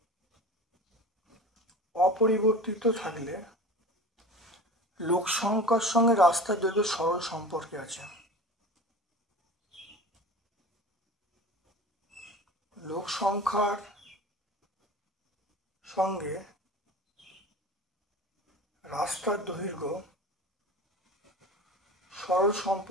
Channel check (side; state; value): both; normal; correlation 0.36